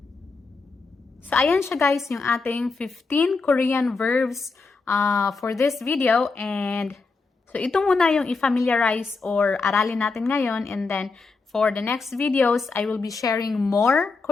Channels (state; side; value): quieter; right; 4.2 dB